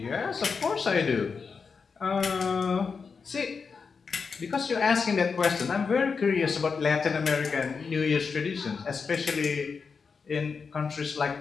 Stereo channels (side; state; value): right; quieter; 5.3 dB